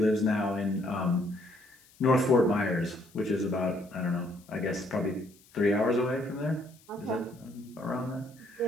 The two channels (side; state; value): left; noise; hiss, 28 dB below the sound